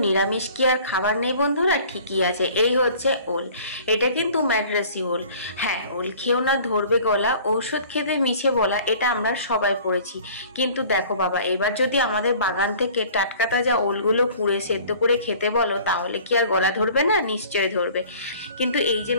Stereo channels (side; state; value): both; inverted; correlation -0.48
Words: নিরামিষ কি আর খাবার নেই বন্ধুরা? ঠিকই আছে, এই হচ্ছে ওল। এটা কিন্তু ম্যাড্রাসি ওল। হ্যাঁ, ওল খেও না, ধরবে গলা, ঔষধ খেতে মিছে বলা, এটা আমরা সবাই পড়েছি। কিন্তু দেখো বাবা, এবার যদি আমাদের বাগান থেকে টাটকা তাজা ওলগুলো পুড়ে সেদ্ধ করে খেতে বলো, তাহলে কি আর গলা ধরবে না? নিশ্চয় ধরবে। কিন্তু এই যে